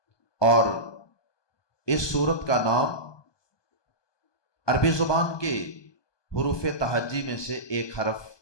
اور اس سورت کا نام عربی زبان کے حروف تہجی میں سے ایک حرف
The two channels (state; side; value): late; right; 1.2 ms